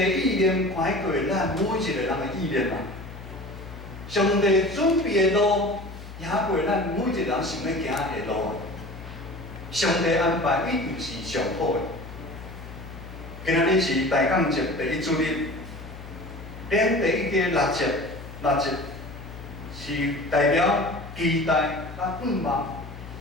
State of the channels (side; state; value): left; noise; hum, 13 dB below the sound